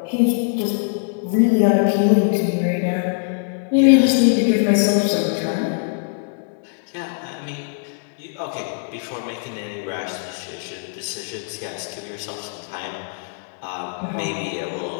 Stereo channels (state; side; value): silent; right; 64 dB below the other